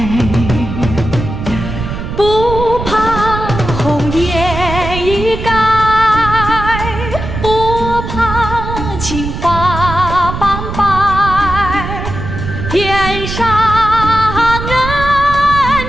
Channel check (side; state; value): right; noise; rumble, 6 dB below the sound